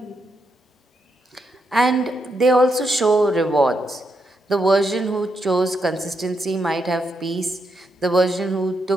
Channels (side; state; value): both; normal; correlation 0.81